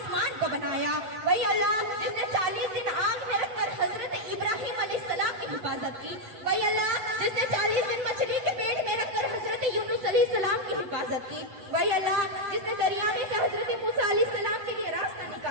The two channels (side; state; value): left; late; 7.9 ms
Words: کو بنایا, وہی اللہ جس نے 40 دن آگ میں رکھ کر حضرت ابراہیم علیہ السلام کی حفاظت کی, وہی اللہ جس نے 40 دن مچھلی کے پیٹ میں رکھ کر حضرت یونس علیہ السلام کی حفاظت کی, وہی اللہ جس نے دریا میں سے حضرت موسیٰ علیہ السلام کے لیے راستہ